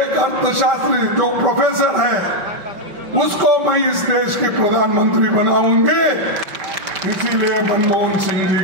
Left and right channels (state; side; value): late; left; 5.6 ms